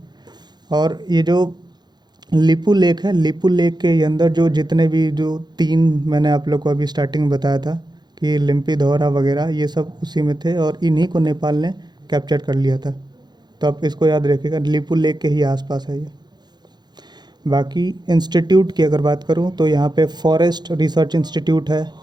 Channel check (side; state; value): left; late; 0.21 ms